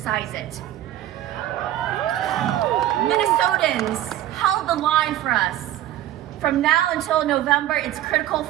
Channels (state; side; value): quieter; left; 13.2 dB